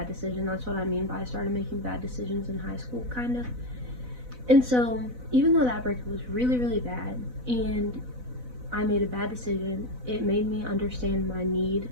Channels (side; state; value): left; late; 4.0 ms